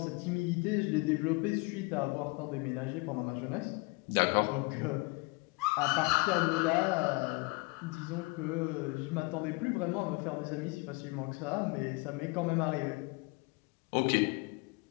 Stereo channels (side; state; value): right; quieter; 26.8 dB